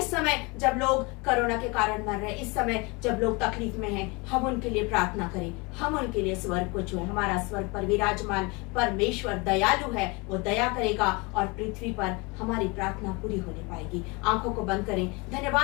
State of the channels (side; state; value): right; quieter; 27.7 dB